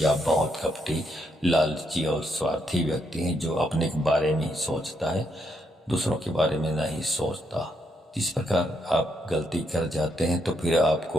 आप बहुत कपटी, लालची और स्वार्थी व्यक्ति हैं, जो अपने के बारे में ही सोचता है, दूसरों के बारे में नहीं सोचता। इस प्रकार आप गलती कर जाते हैं तो फिर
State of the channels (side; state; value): both; normal; correlation 0.77